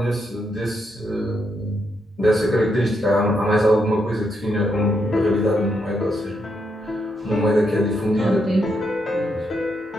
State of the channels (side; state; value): both; normal; correlation 0.79